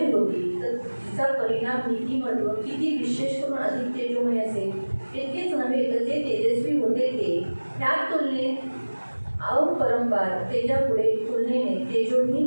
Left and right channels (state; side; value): inverted; both; correlation -1.00